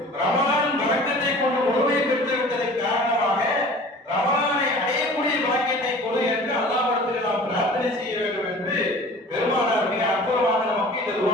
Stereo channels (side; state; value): both; normal; correlation 0.44